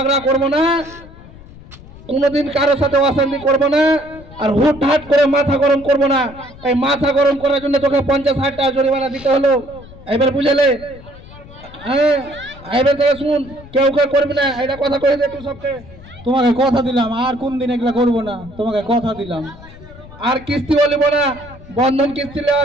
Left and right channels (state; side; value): noise; left; rumble, 19 dB below the sound